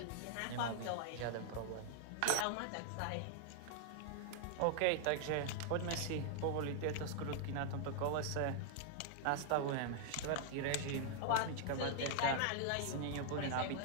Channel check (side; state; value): both; different; correlation -0.01